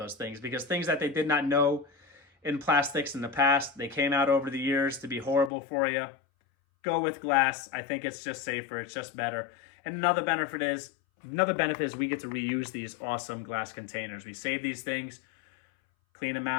things. Because things that they did not know in plastics in the past, they came out over the years to be horrible for you. Go with glass. I think it's just safer. It's just better. And another benefit is we get to reuse these awesome glass containers. We save these things, clean them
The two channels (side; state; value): right; drops out; at 5.5 s